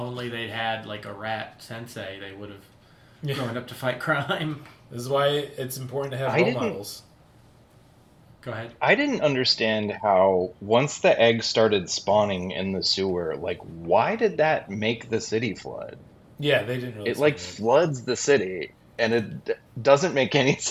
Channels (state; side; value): identical; both; correlation 1.00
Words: they'd had like a rat sensei, they would have grown up to fight crime. This is why it's important to have role models. Go ahead. I didn't understand how once the egg started spawning in the sewer, why did that make the city flood? Yeah, they didn't really. It floods the city, and it doesn't make any